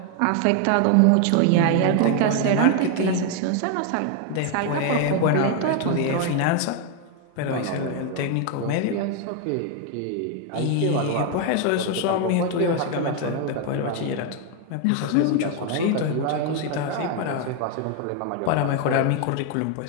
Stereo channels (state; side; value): different; both; correlation 0.01